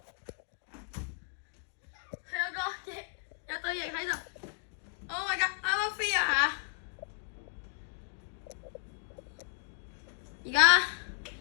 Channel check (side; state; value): right; silent; 55 dB below the other